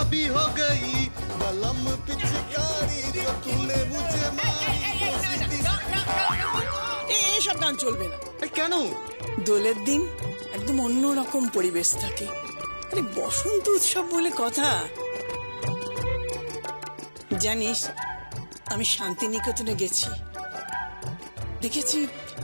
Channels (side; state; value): both; inverted; correlation -1.00